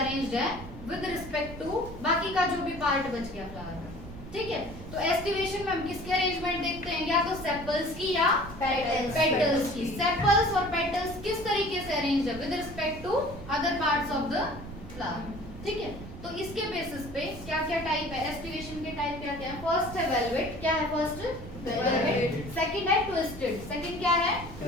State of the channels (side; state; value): right; noise; rumble, 13 dB below the sound